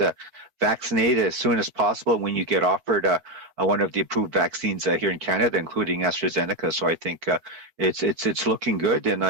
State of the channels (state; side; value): late; left; 13 ms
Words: vaccinated as soon as possible when you get offered one of the approved vaccines here in Canada, including AstraZeneca. So I think it's looking good, and